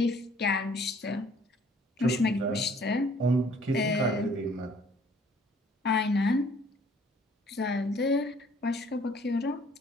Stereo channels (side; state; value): both; normal; correlation 0.58